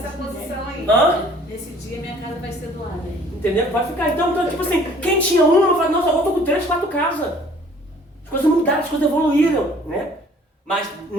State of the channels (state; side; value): normal; both; correlation 0.54